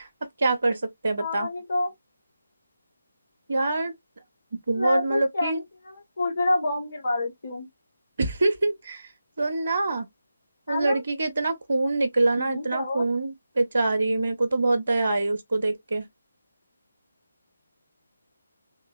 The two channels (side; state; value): both; inverted; correlation -0.92